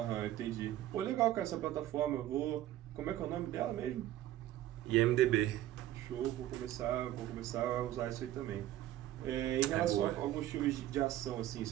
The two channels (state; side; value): quieter; left; 13.6 dB